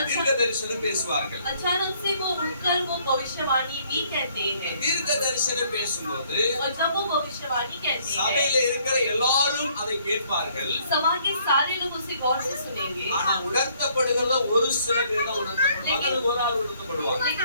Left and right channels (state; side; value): inverted; both; correlation -0.64